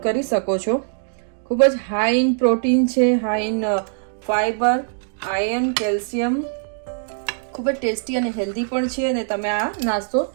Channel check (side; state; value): left; silent; digital silence